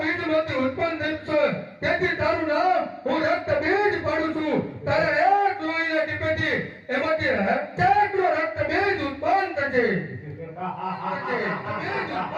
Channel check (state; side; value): identical; both; correlation 1.00